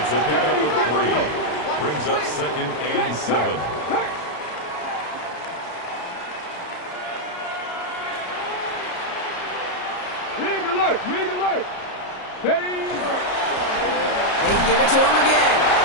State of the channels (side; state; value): right; late; 33 ms